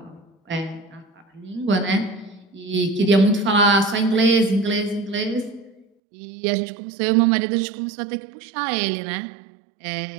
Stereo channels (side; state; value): left; drops out; at 5.9 s